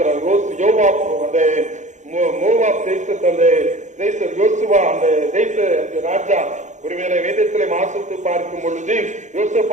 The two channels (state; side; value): late; left; 0.35 ms